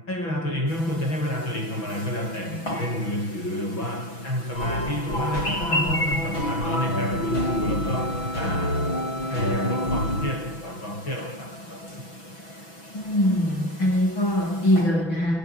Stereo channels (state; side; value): late; right; 6.0 ms